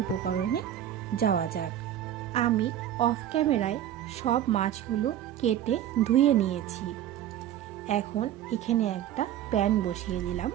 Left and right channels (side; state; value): left; quieter; 11.3 dB